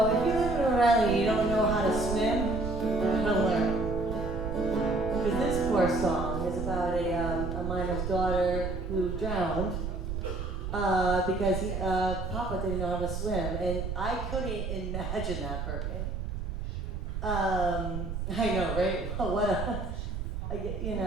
if you live in a rally and you don't know how to swim, you're gonna learn. Because this poor song is about a miner's daughter who drowned because Papa didn't know how to swim, and I couldn't imagine that for me. I know, right? What a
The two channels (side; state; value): right; noise; rumble, 4 dB below the sound